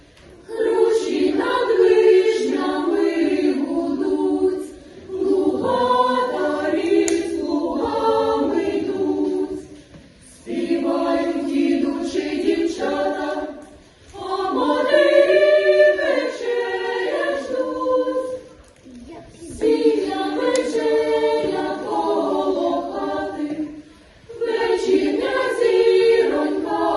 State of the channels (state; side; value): identical; both; correlation 1.00